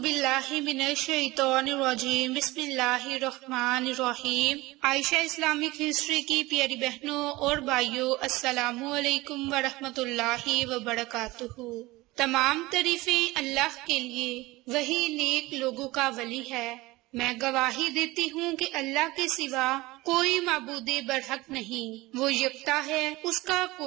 من الشیطان الرجیم، بسم اللہ الرحمن الرحیم۔ عائشہ اسلامک ہسٹری کی پیاری بہنوں اور بھائیوں، السلام علیکم ورحمۃ اللہ وبرکاتہ۔ تمام تعریفیں اللہ کے لیے، وہی نیک لوگوں کا ولی ہے۔ میں گواہی دیتی ہوں کہ اللہ کے سوا کوئی معبود برحق نہیں، وہ یکتا ہے، اس کا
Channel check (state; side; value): quieter; left; 20.4 dB